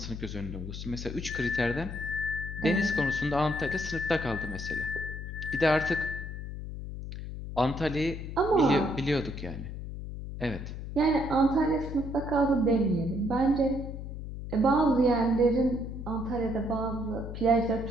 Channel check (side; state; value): left; noise; hum, 8 dB below the sound